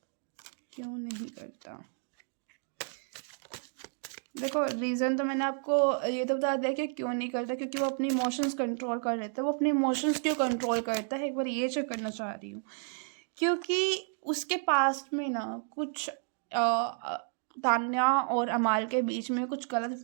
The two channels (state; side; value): silent; left; 57 dB below the other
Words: क्यों नहीं करता? देखो रीज़न तो मैंने आपको ये तो बता दिया कि क्यों नहीं करता, क्योंकि वो अपने इमोशंस कंट्रोल कर लेता है। वो अपने इमोशंस क्यों कंट्रोल करता है, एक बार ये चेक करना चाह रही हूँ। क्योंकि उसके पास्ट में ना कुछ तान्या और अमाल के बीच में कुछ गलत